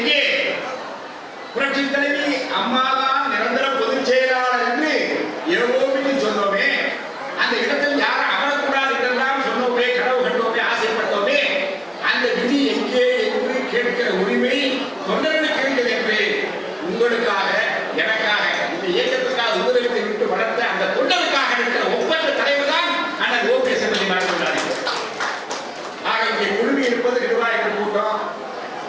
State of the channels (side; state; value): both; identical; correlation 1.00